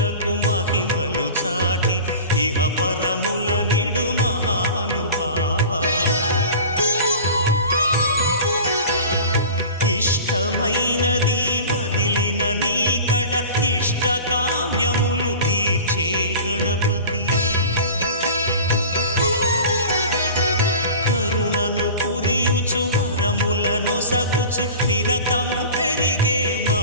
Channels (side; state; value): both; inverted; correlation -0.37